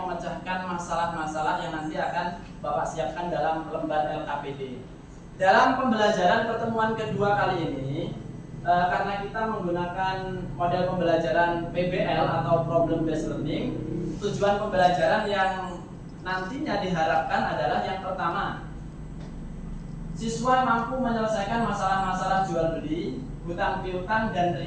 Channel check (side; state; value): both; identical; correlation 1.00